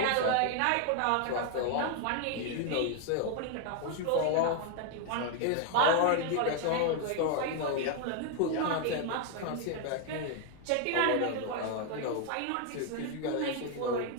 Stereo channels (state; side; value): different; both; correlation 0.01